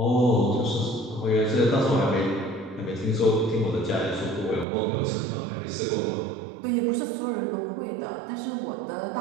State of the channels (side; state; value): left; drops out; at 4.7 s